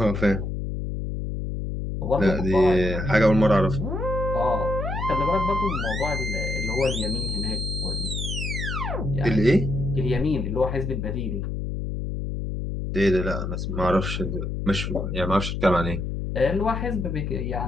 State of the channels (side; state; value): left; noise; hum, 3 dB below the sound